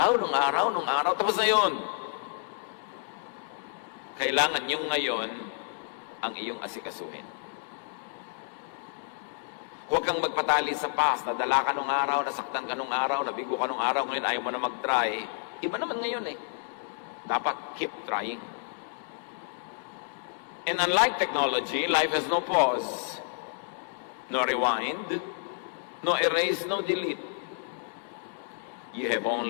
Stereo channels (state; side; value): silent; right; digital silence